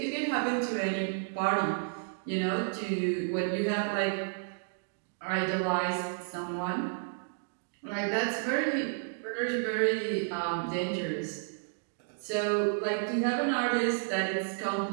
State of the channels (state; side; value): silent; left; digital silence